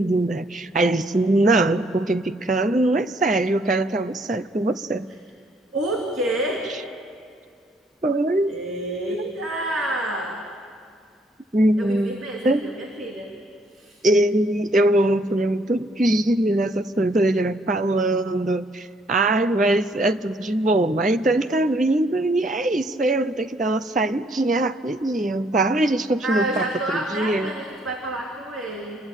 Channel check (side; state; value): both; normal; correlation 0.67